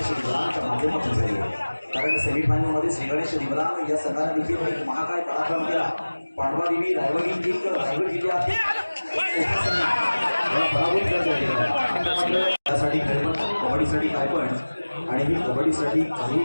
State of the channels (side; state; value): both; inverted; correlation -1.00